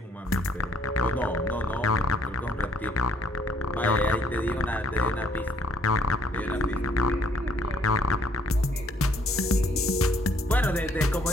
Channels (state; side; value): normal; both; correlation 0.63